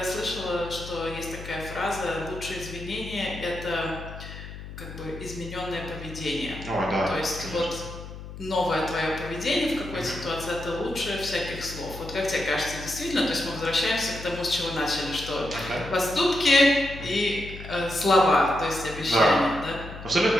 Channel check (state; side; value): noise; left; hum, 12 dB below the sound